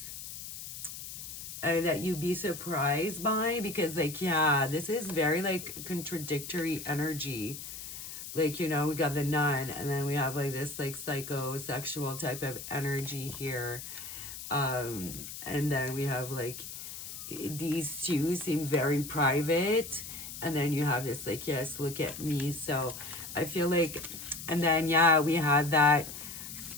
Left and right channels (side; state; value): left; noise; hiss, 10 dB below the sound